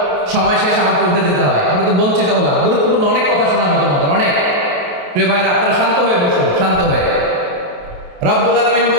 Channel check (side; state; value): left; late; 28 ms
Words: সময় শেষ, আমাকে উঠে যেতে হয়, আমরা তো বঞ্চিত হলাম। গুরুত্বপূর্ণ অনেক কথা শোনাবো তোমাদের, অনেক। প্রিয় ভাইরা, আপনারা শান্ত হয়ে বসুন, শান্ত হয়ে। রব্বুল আলামিন